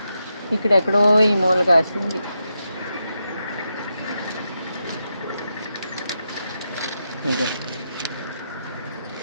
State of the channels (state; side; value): inverted; both; correlation -0.86